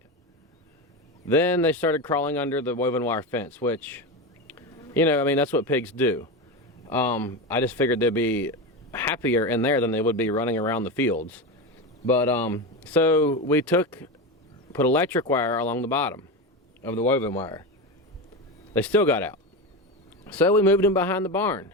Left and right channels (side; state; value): both; normal; correlation 0.19